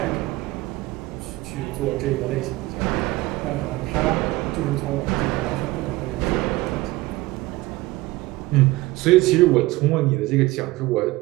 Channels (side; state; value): left; quieter; 19.6 dB